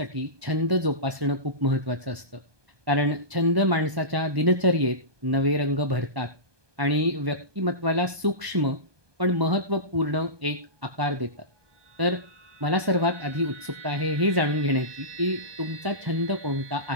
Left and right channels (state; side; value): late; left; 1.2 ms